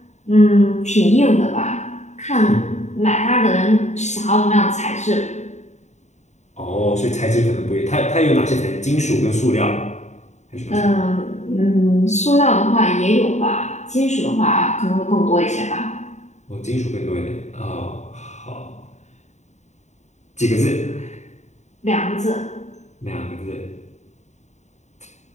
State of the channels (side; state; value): right; late; 0.34 ms